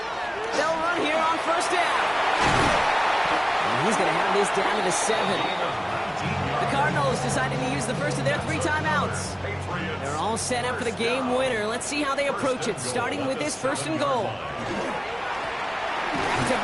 They'll run here on first down. And he's going to have this down to the 7. The Cardinals deciding to use the first of their 3 timeouts. They're all set up for the game winner. Let's see how they approach it, starting with this first and goal.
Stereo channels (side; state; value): both; identical; correlation 1.00